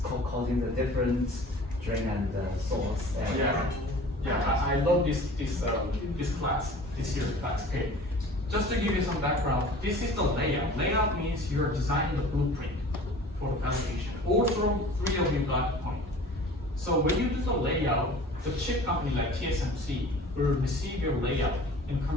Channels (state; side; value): normal; both; correlation 0.44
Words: causing the different drain and source. And yeah, I love this class, this year's class. Okay, just to give you some background, this is the layout. Layout means you're designing the blueprint for the fabrication. All 3 of you got the point. So when you do the layout, the chip company like TSMC will receive your layout and